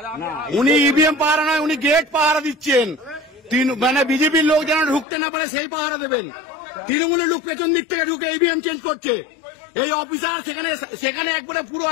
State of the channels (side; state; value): right; drops out; at 5.1 s